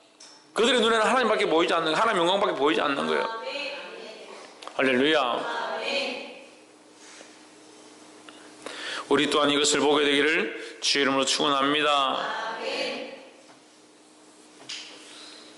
그들의 눈에는 하나님밖에 보이지 않는, 하나님 영광밖에 보이지 않는 거예요. 할렐루야. 우리 또한 이것을 보게 되기를 주의 이름으로 축원합니다.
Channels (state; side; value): identical; both; correlation 1.00